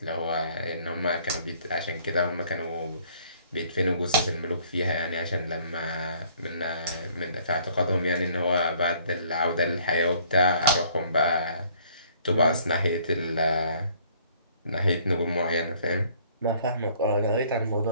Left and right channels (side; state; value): both; inverted; correlation -0.60